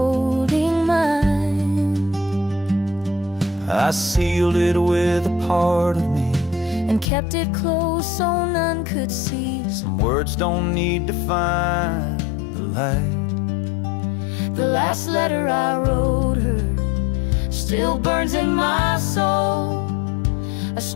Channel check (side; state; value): right; drops out; at 7.1 s